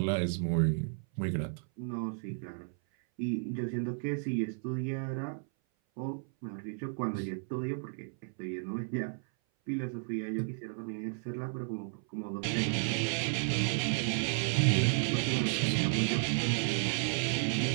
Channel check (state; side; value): silent; left; 56 dB below the other